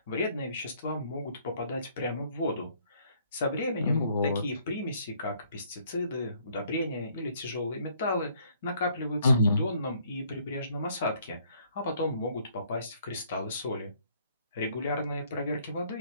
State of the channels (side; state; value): both; inverted; correlation -0.64